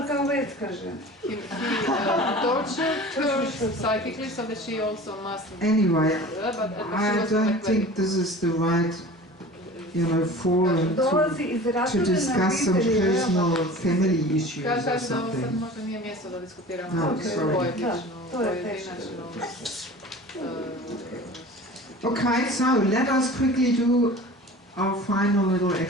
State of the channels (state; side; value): normal; both; correlation 0.40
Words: kao vetska žena. He tortured her psychically so that she also must... Anyway, I don't think this is the right, you know, forum to discuss some personal family issues or something. No, sorry. Okay, so let us quickly do our final little